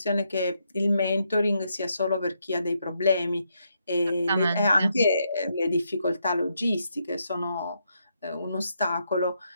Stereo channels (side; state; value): both; inverted; correlation -0.79